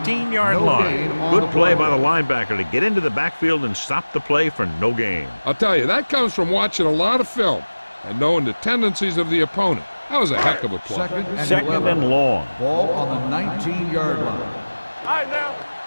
line. Good play by the linebacker to get into the backfield and stop the play for no gain. I'll tell you, that comes from watching a lot of film and knowing the tendencies of the opponent. That was a heck of a play. Second and long. Ball on the 19-yard line. All right, now.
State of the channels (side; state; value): both; inverted; correlation -1.00